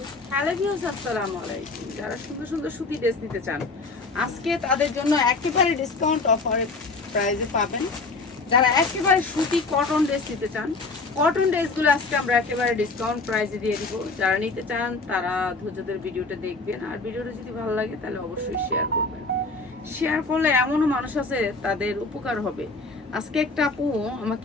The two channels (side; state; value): right; quieter; 3.6 dB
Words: Hello viewers, আসসালামু আলাইকুম। যারা সুন্দর সুন্দর সুতি ড্রেস নিতে চান আজকে তাদের জন্য একেবারে ডিসকাউন্ট অফার প্রাইসে পাবেন। যারা একেবারে সুতি কটন ড্রেস নিতে চান, কটন ড্রেসগুলো আজকে আমরা একেবারে ডিসকাউন্ট প্রাইসে দিয়ে দিব। যারা নিতে চান তারা ধৈর্যদের ভিডিওটা দেখবেন, আর ভিডিওটা যদি ভালো লাগে তাহলে অবশ্যই শেয়ার করবেন। শেয়ার করলে এমনও মানুষ আছে তাদের উপকার হবে। আজকে একটা আপু